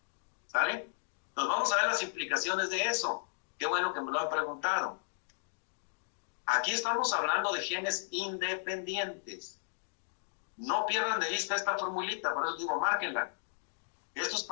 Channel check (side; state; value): right; silent; digital silence